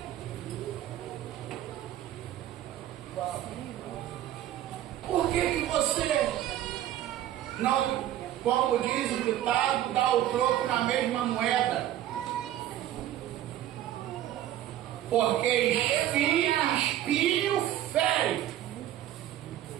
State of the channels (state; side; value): quieter; left; 12.6 dB